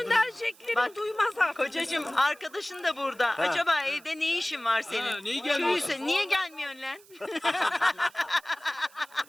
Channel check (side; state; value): right; noise; hiss, 25 dB below the sound